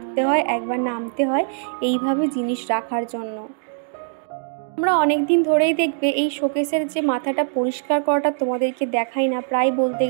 হয়, একবার নামতে হয় এইভাবে জিনিস রাখার জন্য। আমরা অনেক দিন ধরেই দেখবে এই শোকেসের যে মাথাটা পরিষ্কার করাটা তোমাদেরকে দেখাই না, প্রায় বলতে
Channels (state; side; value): silent; left; digital silence